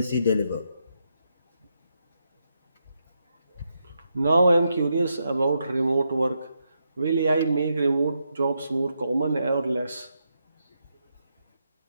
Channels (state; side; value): inverted; both; correlation -0.82